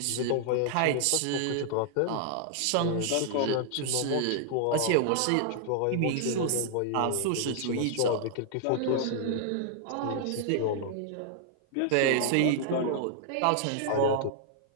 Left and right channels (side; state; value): both; different; correlation -0.01